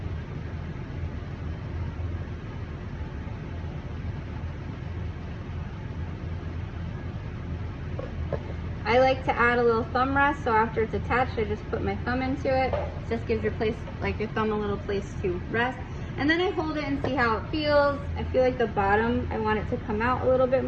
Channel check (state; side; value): identical; both; correlation 1.00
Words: I like to add a little thumb rest, so after it's attached, I just put my thumb into it. It just gives your place, like your thumb, a little place to rest. And then I hold it and see how it feels. I feel like the bottom, I want it to come out a little bit